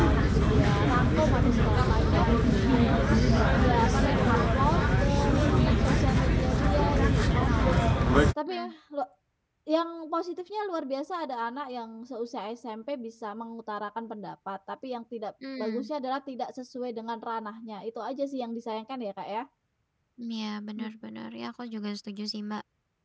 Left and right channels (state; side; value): identical; both; correlation 1.00